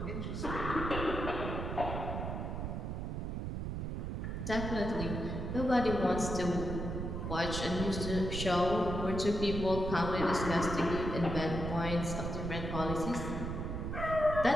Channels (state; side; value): noise; right; rumble, 3 dB below the sound